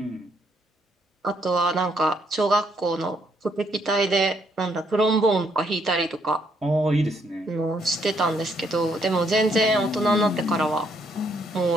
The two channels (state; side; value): normal; both; correlation 0.72